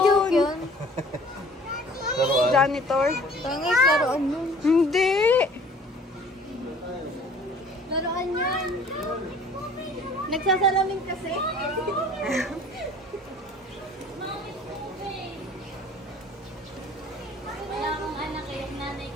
yun. yun? Laruan. Janitor? Tangis, laruan yun. Hindi. Laruan yan. Nagsasalamin kasi. Wala akong anak eh. Nanay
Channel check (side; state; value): both; normal; correlation 0.50